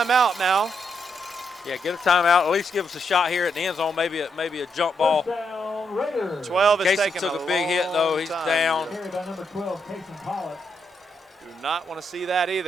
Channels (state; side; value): normal; both; correlation 0.79